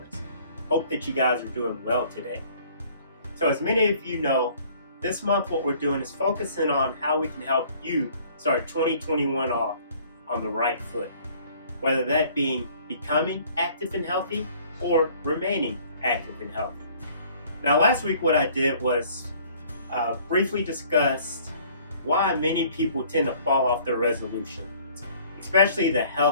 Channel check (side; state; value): both; inverted; correlation -0.56